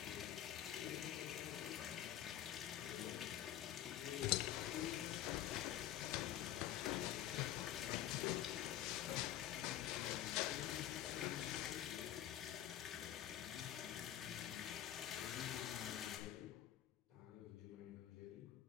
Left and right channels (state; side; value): quieter; right; 12.3 dB